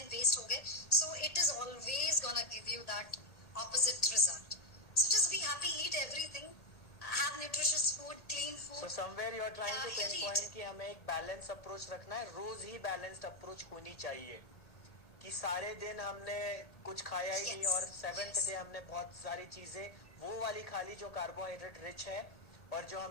वेस्ट हो गए. So it is always gonna give you that opposite result. So just be happy, eat everything, have nutritious food, clean food. So somewhere you are trying to healthy pinpoint eating. कि हमें एक balance approach रखना है, रोज ही balanced approach होनी चाहिए, कि सारे दिन हमने कुछ खाया ही नहीं और 7th डे हमने बहुत सारी चीजें वो वाली खा ली जो कार्बोहाइड्रेट रिच है, और जो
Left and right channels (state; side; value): late; right; 1.8 ms